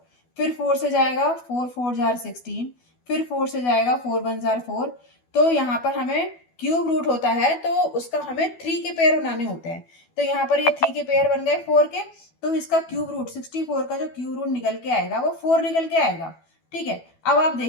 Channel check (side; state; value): right; late; 12 ms